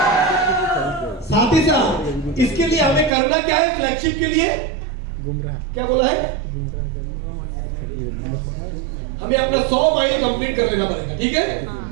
साथ ही साथ इसके लिए हमें करना क्या है? फ्लैगशिप के लिए गुमराह, क्या बोला है? हमें अपना 100 माइल कंप्लीट कर लेना पड़ेगा। ठीक है?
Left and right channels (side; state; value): left; drops out; at 3.1 s